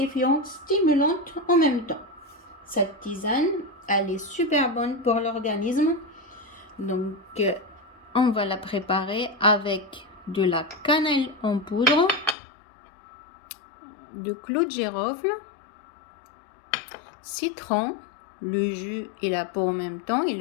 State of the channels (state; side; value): drops out; right; at 12.4 s